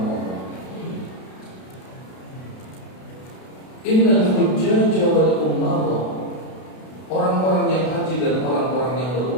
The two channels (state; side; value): late; right; 32 ms